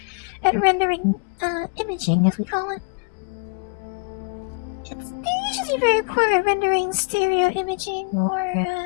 at rendering imaging, as we call it. They're usually very poor at rendering stereo imaging or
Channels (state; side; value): quieter; right; 37.0 dB